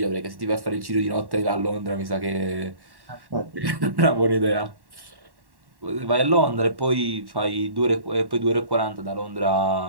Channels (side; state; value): left; late; 1.1 ms